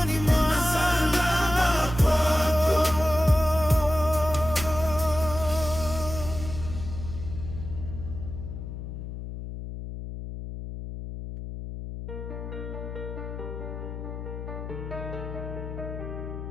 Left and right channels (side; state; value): left; noise; hum, 8 dB below the sound